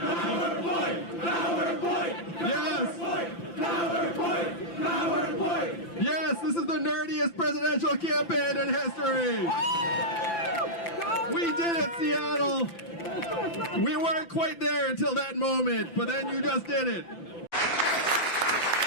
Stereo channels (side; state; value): right; late; 5.9 ms